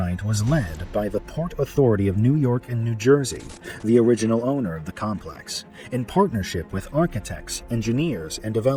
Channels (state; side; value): identical; both; correlation 1.00